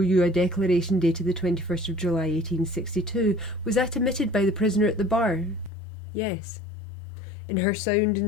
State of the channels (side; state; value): right; drops out; at 5.7 s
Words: you a declaration dated the 21st of July 1862. Was that omitted by the prisoner at the bar? Yes. In her sound